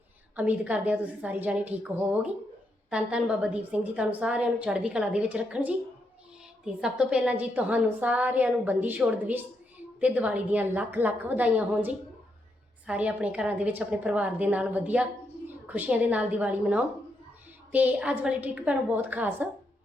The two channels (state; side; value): normal; both; correlation 0.80